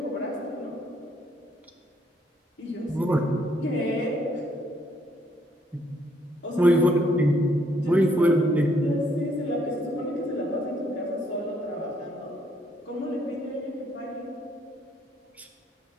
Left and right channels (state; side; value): normal; both; correlation 0.69